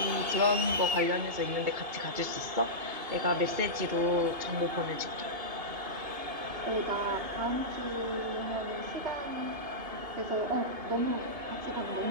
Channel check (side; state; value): left; late; 2.8 ms